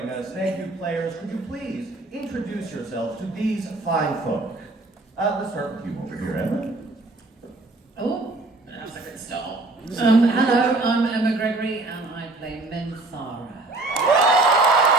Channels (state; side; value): quieter; left; 3.1 dB